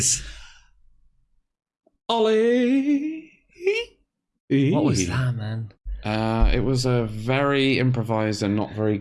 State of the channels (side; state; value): both; identical; correlation 1.00